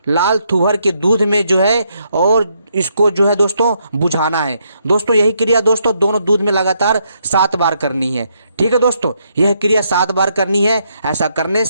लाल तुअर के दूध में जो है और इसको जो है दोस्तों बुझाना है। दोस्तों यही क्रिया दोस्तों दोनों दूध में लगातार 7 बार करनी है। ठीक है दोस्तों, यह क्रिया 7 बार करनी है। ऐसा करने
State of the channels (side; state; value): both; inverted; correlation -0.76